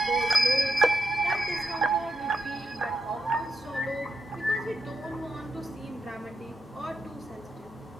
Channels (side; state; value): both; normal; correlation 0.85